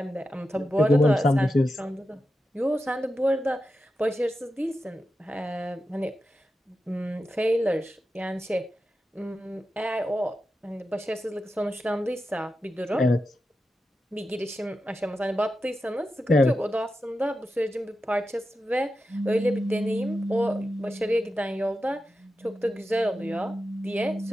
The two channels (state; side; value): normal; both; correlation 0.90